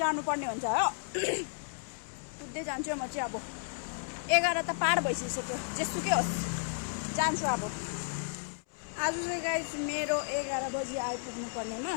हुन्छ हो कुद्दै जान्छु म चाहिँ अब 11 त पार भइसक्यो जेसुकै होस् जान्छु अब आज चाहिँ गाइस मेरो 11 बजी आइपुग्नु पर्नेमा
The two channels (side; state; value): right; silent; 56 dB below the other